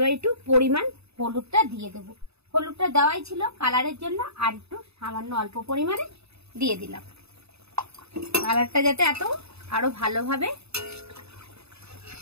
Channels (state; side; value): late; left; 0.79 ms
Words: একটু পরিমাণ হলুদটা দিয়ে দেবো। হলুদটা দেওয়াই ছিল কালারের জন্য, আর একটু সামান্য অল্প পরিমাণে দিয়ে দিলাম, কালারটা যাতে আরো ভালোভাবে